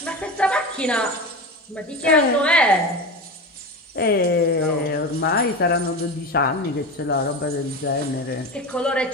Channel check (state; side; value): normal; both; correlation 0.25